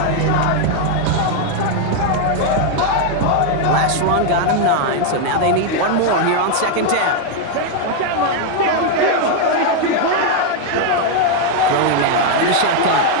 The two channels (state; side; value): different; both; correlation 0.00